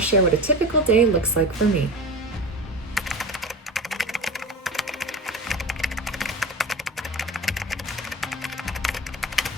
share what a typical day looks like for me.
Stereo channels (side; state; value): both; normal; correlation 0.31